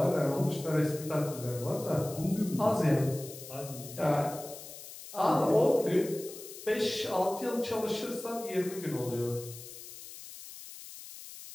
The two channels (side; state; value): left; noise; hiss, 14 dB below the sound